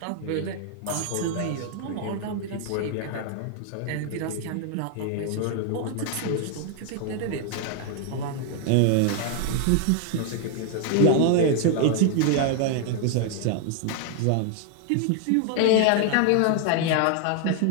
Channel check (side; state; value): both; different; correlation 0.00